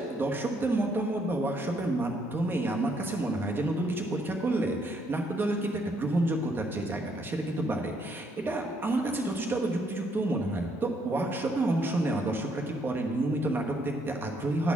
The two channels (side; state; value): both; normal; correlation 0.71